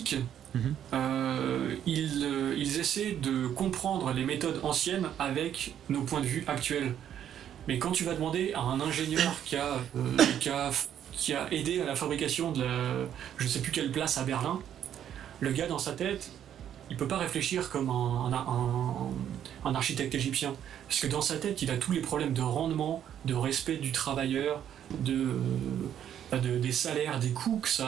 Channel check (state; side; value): quieter; left; 10.0 dB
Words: ils essaient de comprendre les méthodes anciennes avec nos points de vue actuels. Mais quand tu vas demander à un ingénieur qui a aidé à la fabrication de je sais plus quelle place à Berlin, le gars dans sa tête, il peut pas réfléchir comme un architecte égyptien. Parce que dans sa tête, il a tous les problèmes de rendement, de respect du travailleur, des salaires, des coûts que